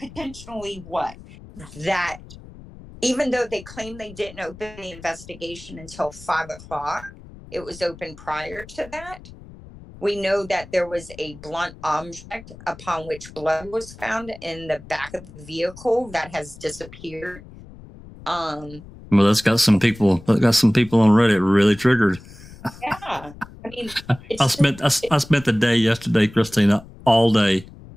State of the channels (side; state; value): left; noise; rumble, 18 dB below the sound